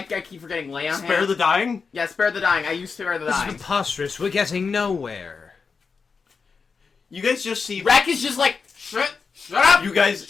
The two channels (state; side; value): quieter; right; 5.2 dB